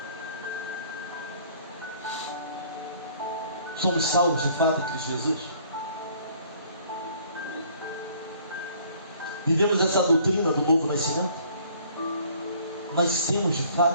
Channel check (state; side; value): inverted; both; correlation -0.57